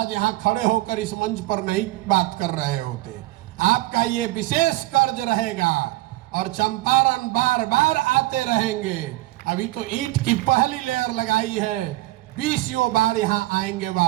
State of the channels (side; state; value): left; quieter; 18.3 dB